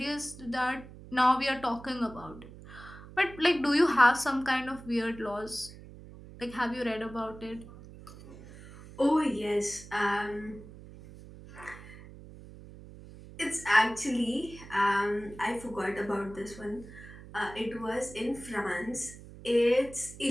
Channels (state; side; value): noise; right; hum, 17 dB below the sound